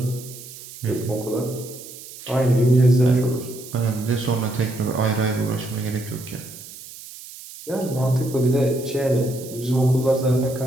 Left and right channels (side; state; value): right; noise; hiss, 15 dB below the sound